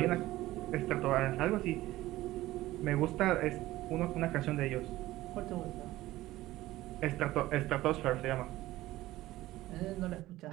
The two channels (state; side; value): quieter; left; 16.6 dB